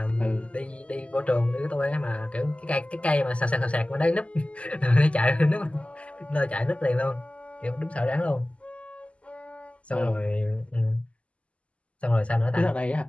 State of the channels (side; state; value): right; late; 0.060 ms